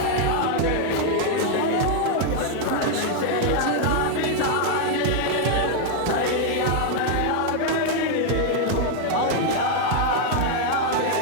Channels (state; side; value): different; both; correlation 0.00